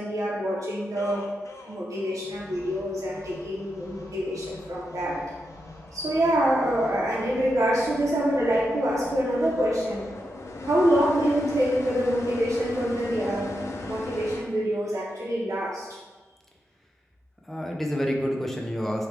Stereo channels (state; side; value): normal; both; correlation 0.86